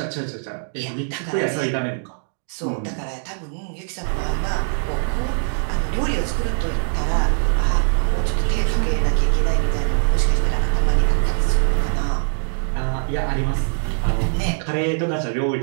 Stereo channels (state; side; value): silent; left; digital silence